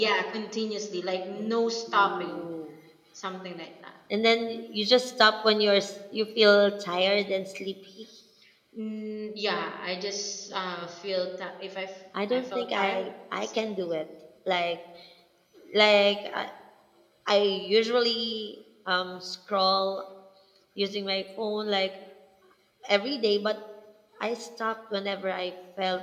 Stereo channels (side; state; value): both; identical; correlation 1.00